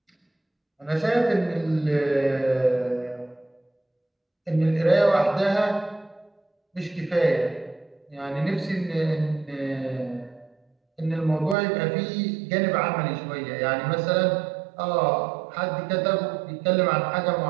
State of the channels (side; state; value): left; drops out; at 11.6 s